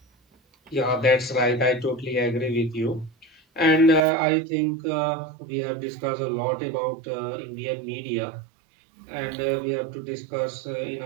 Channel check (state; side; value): drops out; left; at 4.0 s